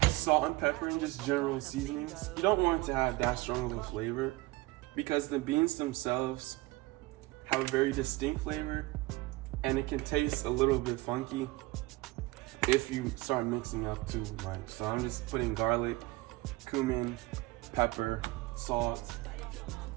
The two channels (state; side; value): quieter; left; 20.6 dB